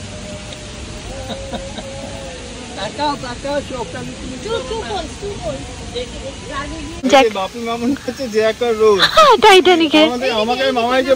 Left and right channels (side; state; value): both; identical; correlation 1.00